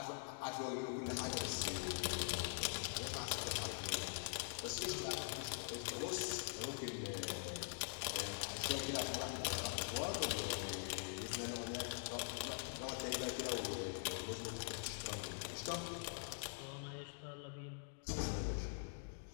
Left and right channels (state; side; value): silent; right; digital silence